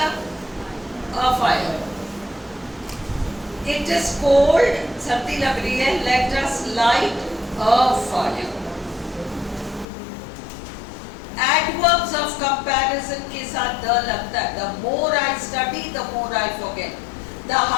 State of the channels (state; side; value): drops out; right; at 9.9 s